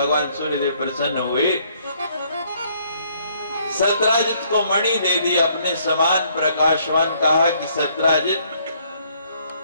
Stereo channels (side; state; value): both; inverted; correlation -0.66